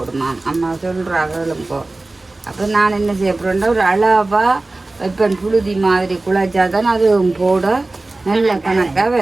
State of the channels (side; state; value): left; quieter; 3.1 dB